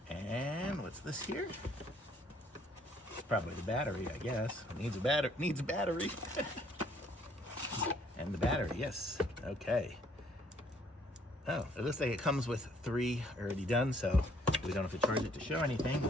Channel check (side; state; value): both; normal; correlation 0.64